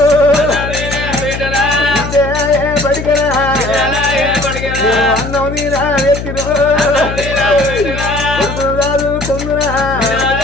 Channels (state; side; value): noise; left; hum, 7 dB below the sound